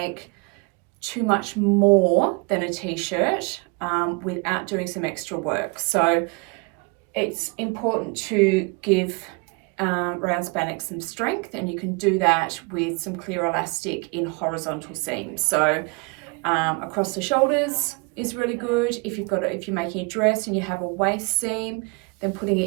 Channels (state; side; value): quieter; left; 30.8 dB